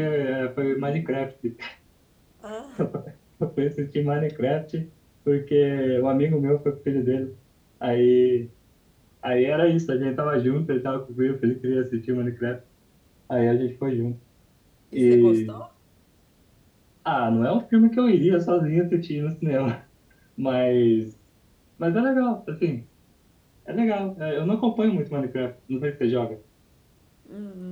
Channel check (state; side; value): identical; both; correlation 1.00